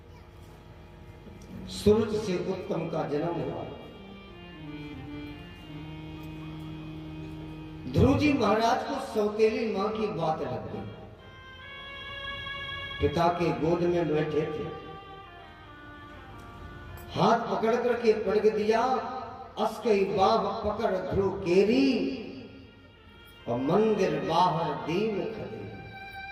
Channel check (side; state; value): both; identical; correlation 1.00